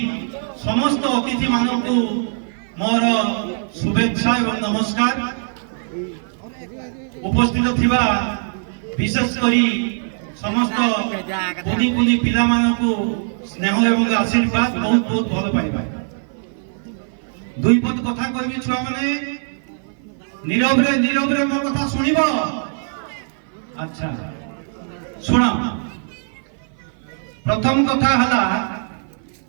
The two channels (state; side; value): silent; left; 56 dB below the other